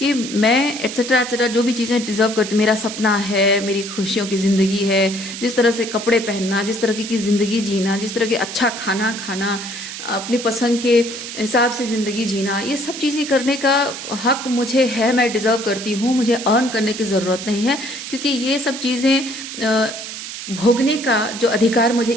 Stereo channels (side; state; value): right; noise; hiss, 9 dB below the sound